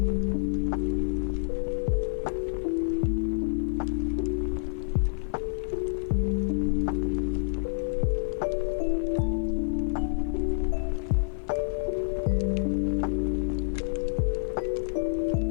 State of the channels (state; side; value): silent; right; 56 dB below the other